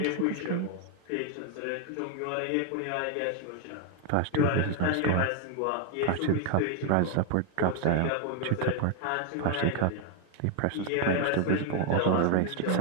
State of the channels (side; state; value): both; different; correlation 0.01